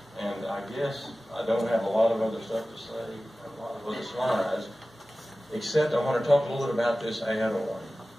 And I guess I don't have a lot of other stuff to say, a lot of other slides, except I want to talk a little bit about this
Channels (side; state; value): both; normal; correlation 0.96